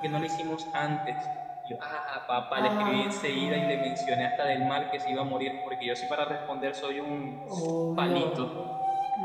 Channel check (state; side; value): identical; both; correlation 1.00